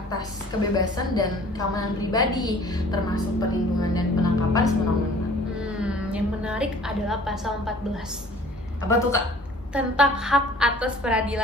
kebebasan dan keamanan pribadi, termasuk perlindungan dan penangkapan sewenang-wenang. Yang menarik adalah pasal 14. Apa tuh Kak? Tentang hak atas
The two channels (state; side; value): normal; both; correlation 0.50